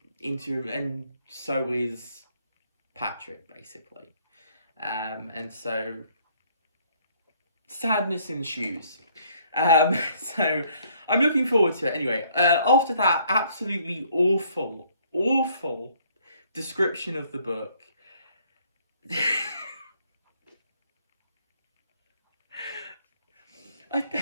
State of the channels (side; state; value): both; inverted; correlation -0.64